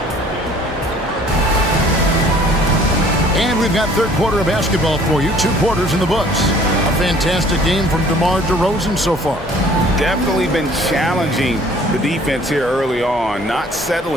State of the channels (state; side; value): normal; both; correlation 0.54